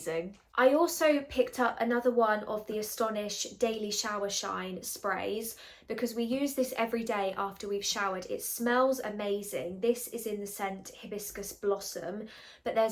I also picked up another one of the Astonish Daily Shower Shine sprays because we use this every day after we've showered. It smells amazing. This is in the scent Hibiscus Blossom, but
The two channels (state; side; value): identical; both; correlation 1.00